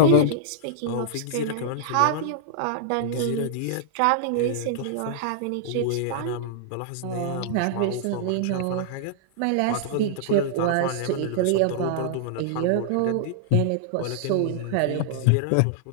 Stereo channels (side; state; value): both; different; correlation -0.01